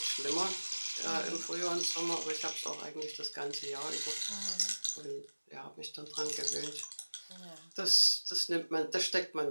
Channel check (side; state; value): both; inverted; correlation -1.00